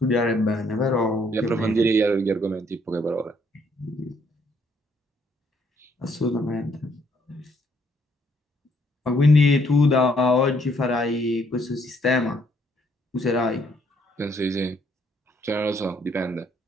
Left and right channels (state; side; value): normal; both; correlation 0.68